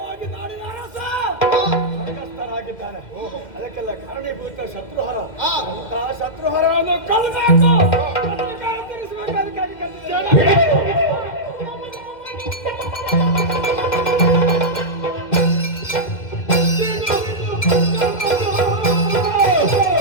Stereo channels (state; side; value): late; right; 2.1 ms